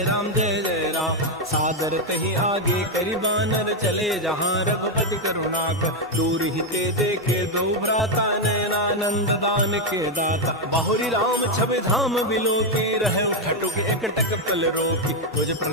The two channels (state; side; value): normal; both; correlation 0.04